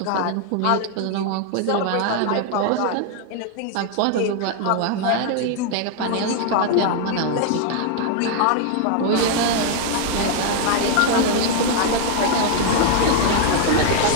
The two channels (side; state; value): both; different; correlation 0.00